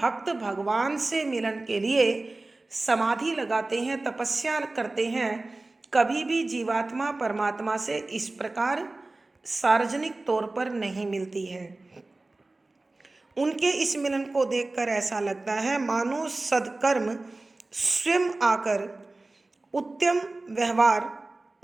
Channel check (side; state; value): left; quieter; 3.1 dB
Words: भगवान से मिलन के लिए समाधि लगाते हैं, तपस्या करते हैं। कभी भी जीवात्मा परमात्मा से इस प्रकार सार्वजनिक तौर पर नहीं मिलती है। उनके इस मिलन को देखकर ऐसा लगता है मानो सद्कर्म स्वयं आकर उत्तम व्यवहार,